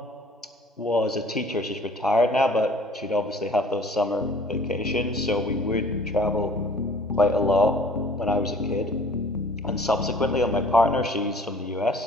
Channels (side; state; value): both; normal; correlation 0.51